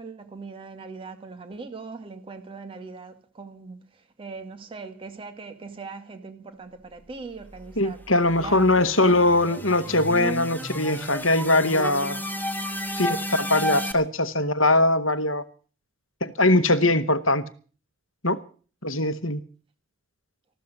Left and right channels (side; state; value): both; normal; correlation -0.19